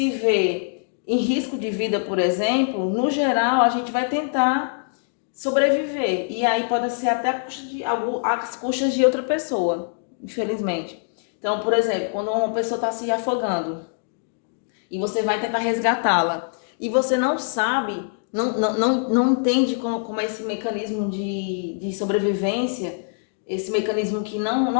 vê em risco de vida, por exemplo, no geral a gente vai tentar sobreviver, e aí pode ser até às custas de outra pessoa, infelizmente. Então, por exemplo, quando uma pessoa está se afogando e você vai tentar resgatá-la e você não sabe, não entende como é esse mecanismo de sobrevivência, esse mecanismo que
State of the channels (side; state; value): right; silent; digital silence